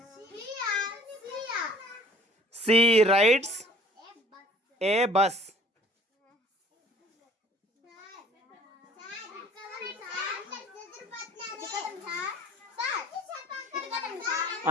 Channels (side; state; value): both; normal; correlation 0.52